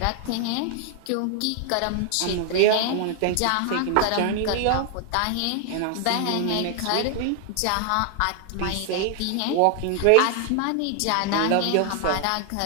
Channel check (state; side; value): different; both; correlation 0.00